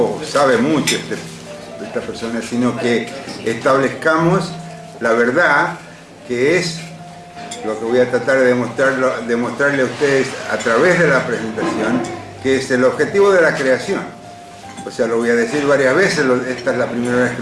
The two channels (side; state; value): both; identical; correlation 1.00